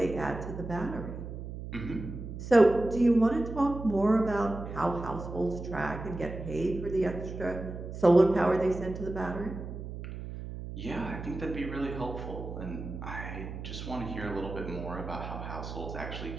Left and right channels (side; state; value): right; noise; hum, 8 dB below the sound